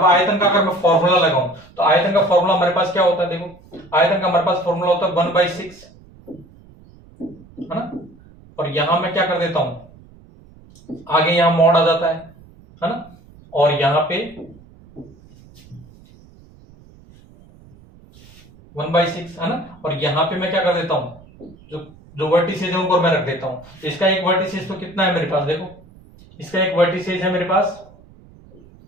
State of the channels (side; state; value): right; noise; rumble, 24 dB below the sound